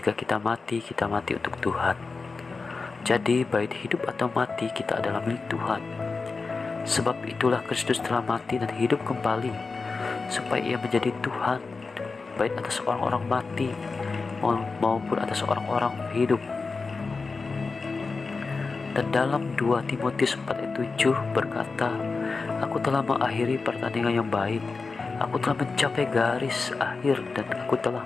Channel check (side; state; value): right; quieter; 4.3 dB